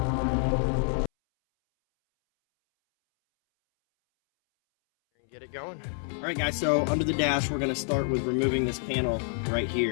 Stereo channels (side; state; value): right; silent; 60 dB below the other